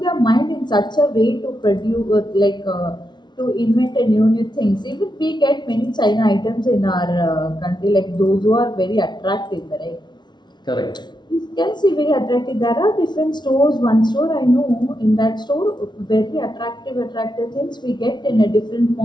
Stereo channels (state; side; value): late; right; 0.21 ms